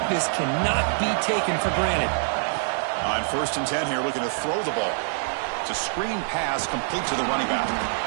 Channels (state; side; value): silent; left; 60 dB below the other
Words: cannot be taken for granted. On first and 10 here, looking to throw the ball. It's a screen pass complete to the running back.